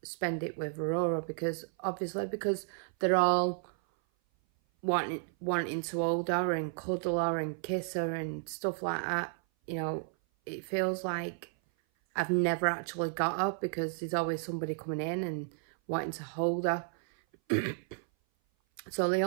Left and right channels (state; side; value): silent; left; 56 dB below the other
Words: spend it with Aurora, because obviously, because they're all wanting to hold her and cuddle her and kiss her and stuff like that. You know, it feels like I've never actually got her, because there's always somebody coming in and wanting to hold her. So the